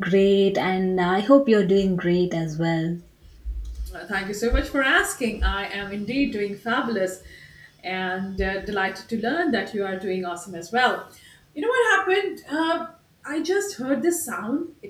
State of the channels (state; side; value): identical; both; correlation 1.00